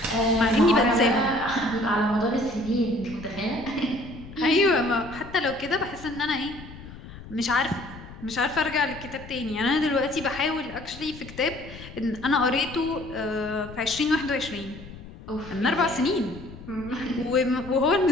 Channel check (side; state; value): left; noise; rumble, 15 dB below the sound